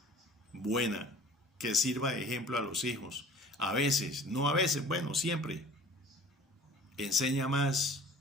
buena, que sirva de ejemplo a los hijos. A veces, no a veces, bueno, siempre. Enseña más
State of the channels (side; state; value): both; normal; correlation 0.47